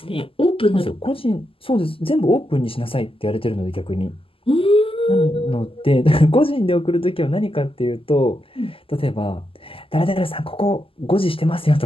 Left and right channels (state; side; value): late; right; 0.26 ms